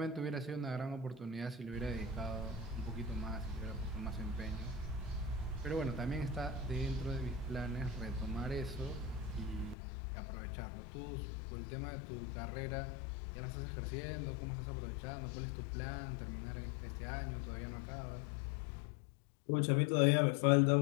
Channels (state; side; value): drops out; right; at 9.8 s